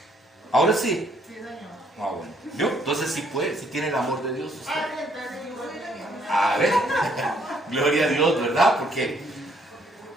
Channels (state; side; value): normal; both; correlation 0.67